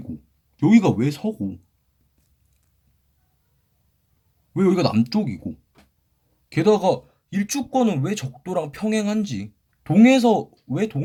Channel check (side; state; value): both; identical; correlation 1.00